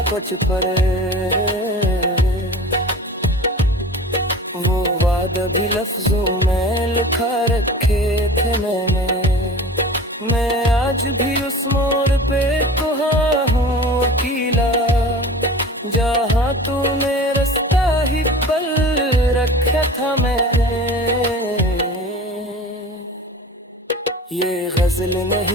कुछ पर, वो वादा भी लफ्जों में लिखा रखे थे मैंने। मैं आज भी उस मोड़ पे कुहा हूँ अकेला, जहाँ तूने रास्ता ही पल रखा था मैंने। ये गजल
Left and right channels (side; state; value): both; normal; correlation 0.38